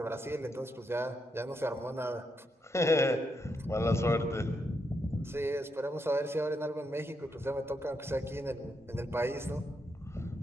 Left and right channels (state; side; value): normal; both; correlation 0.81